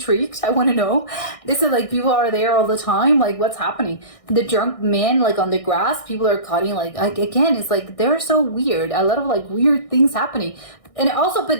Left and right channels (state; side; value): late; right; 1.6 ms